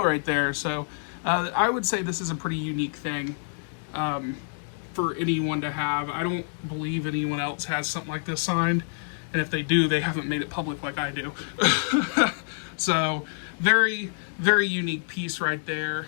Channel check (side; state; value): right; silent; digital silence